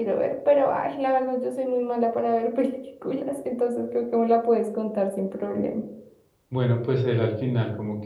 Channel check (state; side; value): identical; both; correlation 1.00